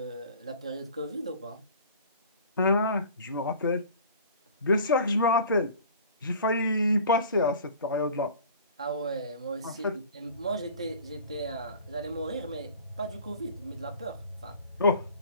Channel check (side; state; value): both; inverted; correlation -0.45